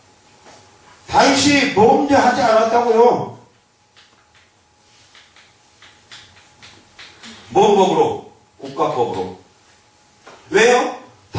다윗이 범죄하지 않았다고요. 뭔 법으로? 국가법으로. 왜요?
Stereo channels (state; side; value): identical; both; correlation 1.00